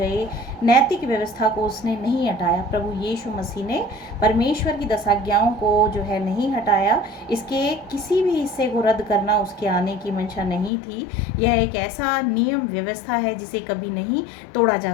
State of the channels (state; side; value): drops out; right; at 10.7 s